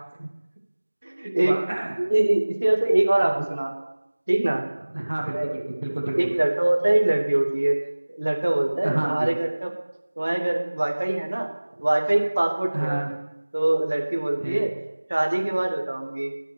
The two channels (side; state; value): both; inverted; correlation -1.00